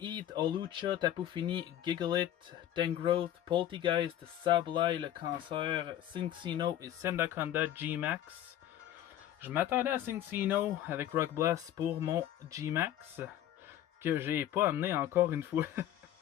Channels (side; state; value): right; quieter; 12.0 dB